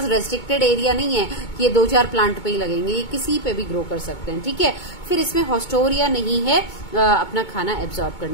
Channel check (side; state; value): right; late; 2.2 ms